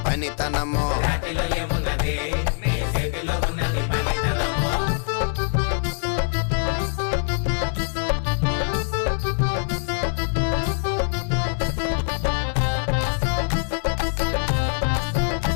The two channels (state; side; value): silent; right; digital silence